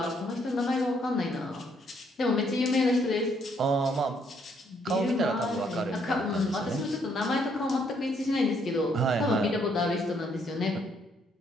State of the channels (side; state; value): both; normal; correlation 0.70